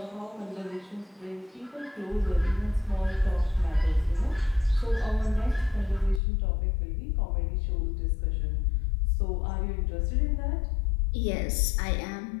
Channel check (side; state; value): right; drops out; at 6.2 s